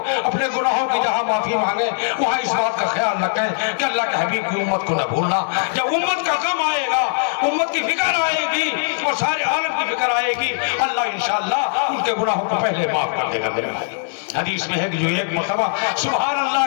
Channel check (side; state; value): right; silent; 61 dB below the other